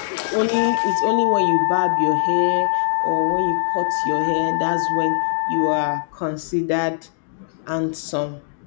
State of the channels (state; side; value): silent; right; digital silence